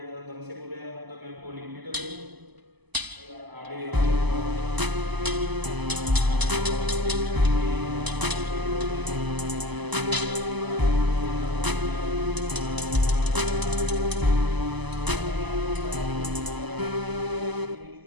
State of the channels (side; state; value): left; late; 1.0 ms